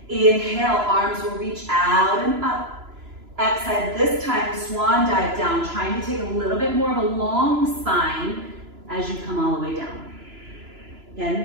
Inhale, arms will reach out and up. Exhale, this time swan dive down, trying to take a little bit more of a long spine as you come all the way down. Again, you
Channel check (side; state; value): left; late; 3.0 ms